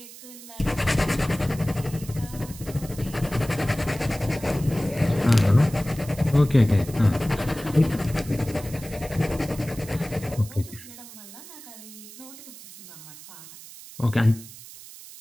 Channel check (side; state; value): right; noise; hiss, 16 dB below the sound